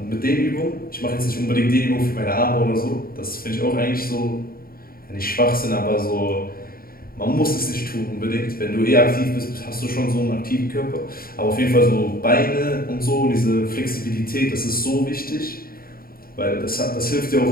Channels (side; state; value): right; late; 0.43 ms